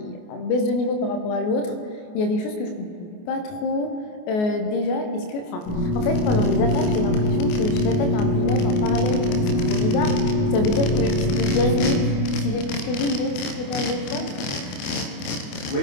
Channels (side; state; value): right; late; 28 ms